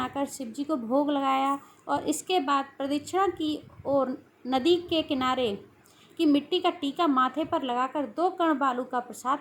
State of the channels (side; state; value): both; identical; correlation 1.00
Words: शिवजी को भोग लगाया और इसके बाद प्रदक्षिणा की और नदी के किनारे की मिट्टी का टीका माथे पर लगाकर 2 कण बालू का